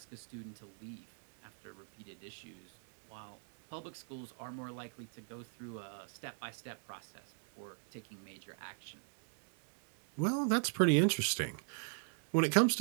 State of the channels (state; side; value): silent; left; digital silence